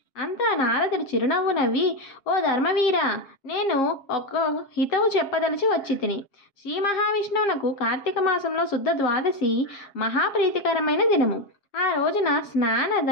అంతా నారదుడు చిరునవ్వు నవ్వి, ఓ ధర్మవీర, నేను ఒక హితవు చెప్పదలిచి వచ్చి తిని. శ్రీ మహావిష్ణువునకు కార్తీక మాసంలో శుద్ధ ద్వాదశి మహాప్రీతికరమైన దినము. ఆ రోజున స్నాన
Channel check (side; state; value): right; late; 7.4 ms